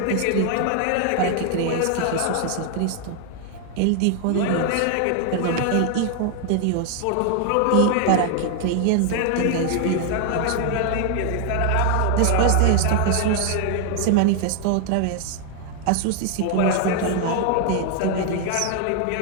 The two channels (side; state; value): both; different; correlation 0.00